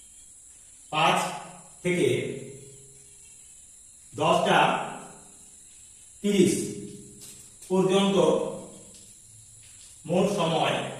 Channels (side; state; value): both; identical; correlation 1.00